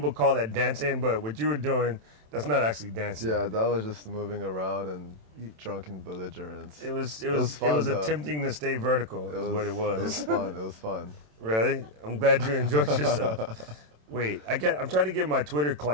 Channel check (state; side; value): late; left; 27 ms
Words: call that dancing, but what you were doing, that's not actually dancing. Yeah, that was just moving around and drunken belligerence. It was fun, attempting to stay vertical is what it was. It was fun. It was fun. Really? I'm glad you enjoyed yourself. Wait, I'm trying to get my Twitter